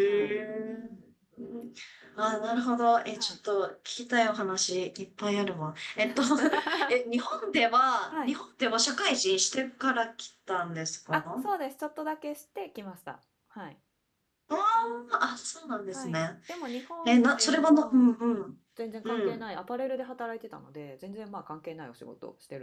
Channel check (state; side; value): identical; both; correlation 1.00